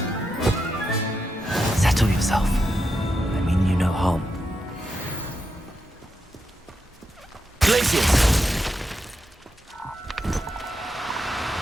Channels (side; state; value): both; normal; correlation 0.86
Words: Settle yourself. I mean you no harm. Glaciers!